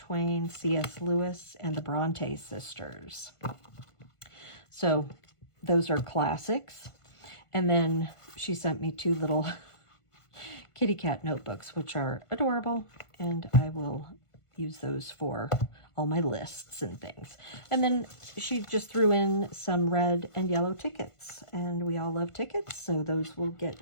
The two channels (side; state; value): right; late; 1.5 ms